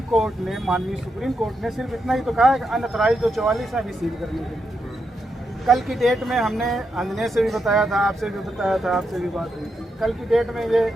कोर्ट ने, माननीय सुप्रीम कोर्ट ने सिर्फ इतना ही तो कहा है कि अनऑथराइज्ड जो 44 है अभी सील करने के लिए। कल की डेट में हमने अंजने से भी बताया था, आपसे भी बताया था, आपसे भी बात हुई। कल की डेट में ये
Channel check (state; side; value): normal; both; correlation 0.83